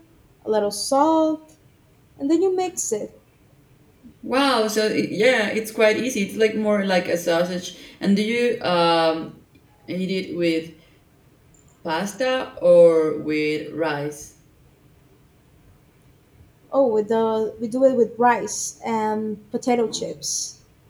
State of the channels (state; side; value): identical; both; correlation 1.00